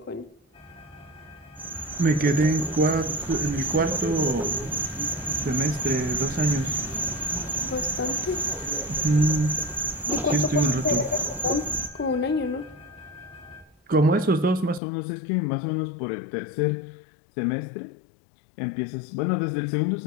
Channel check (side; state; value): right; drops out; at 14.8 s